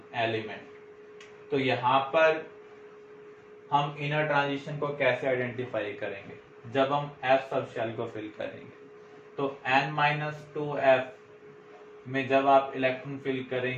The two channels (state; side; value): identical; both; correlation 1.00